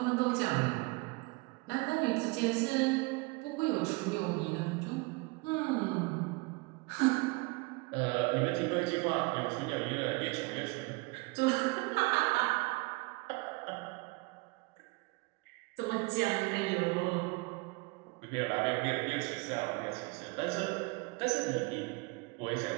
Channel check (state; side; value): quieter; left; 26.6 dB